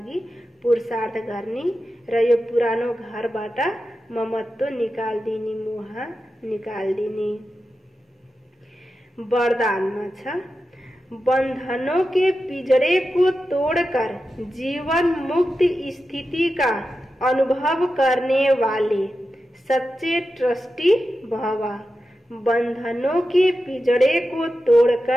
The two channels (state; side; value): normal; both; correlation 0.91